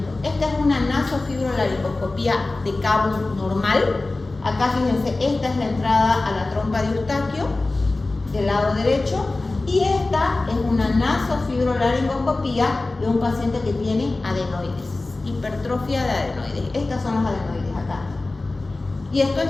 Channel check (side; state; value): right; quieter; 3.2 dB